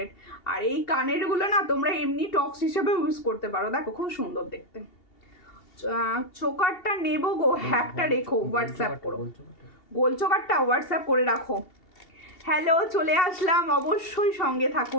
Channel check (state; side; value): late; right; 2.8 ms